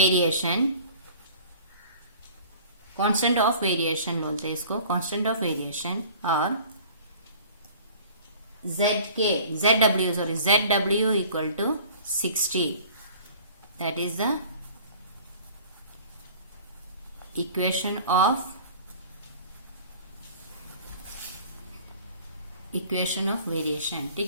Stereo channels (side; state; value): both; inverted; correlation -0.47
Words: constant of variation बोलते हैं इसको, कांस्टेंट ऑफ वेरिएशन. और zw equal to 60. That is the equation of variation.